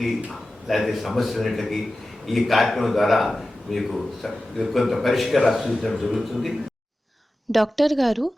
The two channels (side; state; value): both; normal; correlation 0.94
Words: లేకపోతే సమస్యలన్నింటికి ఈ కార్యక్రమం ద్వారా మీకు కొంత పరిష్కారాలు సూచించడం జరుగుతుంది. డాక్టర్ గారు,